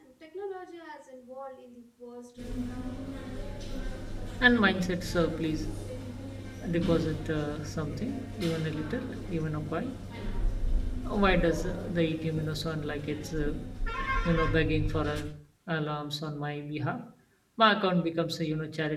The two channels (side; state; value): both; identical; correlation 1.00